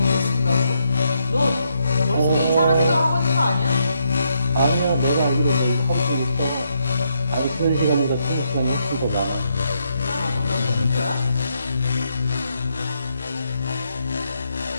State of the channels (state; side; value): inverted; both; correlation -0.77